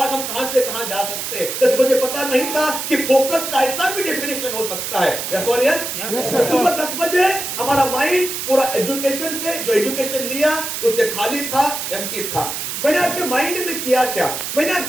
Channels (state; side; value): noise; right; hiss, 4 dB below the sound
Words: हम कहां से कहां जा सकते हैं. 10 बजे पता नहीं था कि फोकस का ऐसा भी डेफिनेशन हो सकता है. यस और यस. सुबह 10 बजे हमारा माइंड पूरा एजुकेशन से, जो एजुकेशन लिया उससे खाली था, एम्प्टी था. मैंने आपके माइंड में किया क्या? मैंने